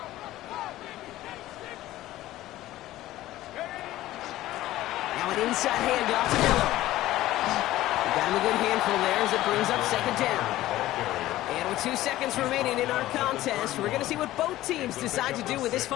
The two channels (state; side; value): quieter; right; 15.4 dB